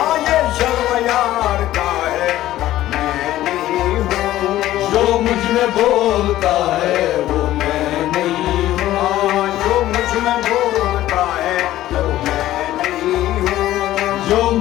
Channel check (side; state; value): right; quieter; 14.3 dB